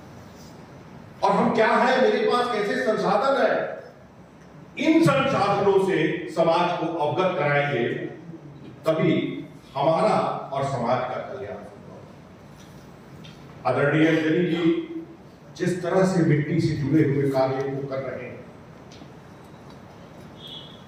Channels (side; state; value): both; identical; correlation 1.00